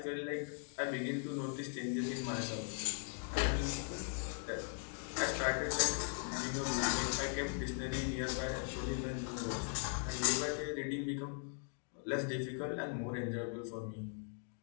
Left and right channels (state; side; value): silent; right; 51 dB below the other